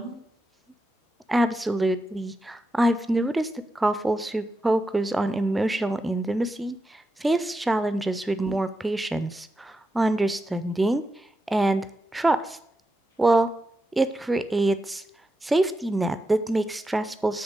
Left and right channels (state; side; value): normal; both; correlation 0.88